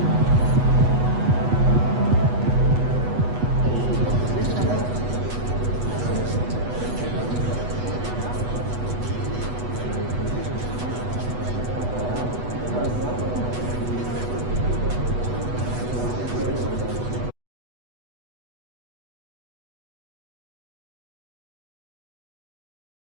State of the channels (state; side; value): late; left; 8.1 ms